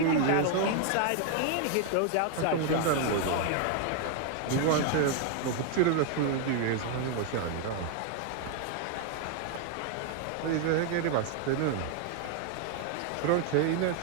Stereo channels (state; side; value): different; both; correlation 0.00